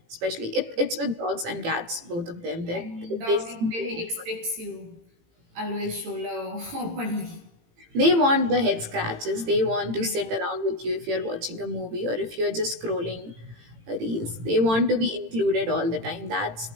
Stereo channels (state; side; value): late; left; 18 ms